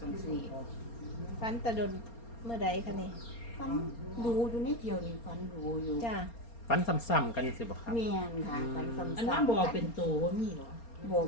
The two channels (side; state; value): right; late; 4.3 ms